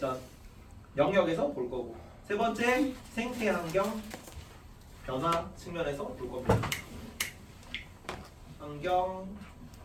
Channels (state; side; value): identical; both; correlation 1.00